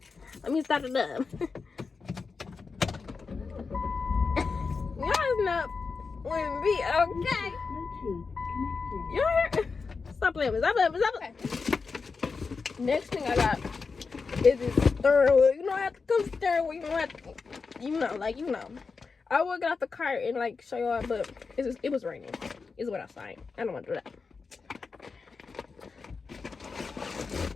Let me start it up. Y'all not with me, okay? You hear? Stop playing with me. Stop playing with me. Stop playing. Okay. Next thing I got is this steering wheel. You know, I have to come steering wheel. You know, you know. I would get out the car and like show y'all, but it was raining. It's wet outside. I don't want to do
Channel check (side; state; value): right; quieter; 4.8 dB